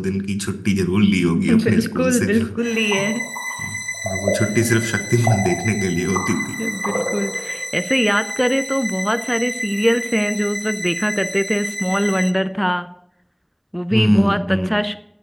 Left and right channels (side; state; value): both; identical; correlation 1.00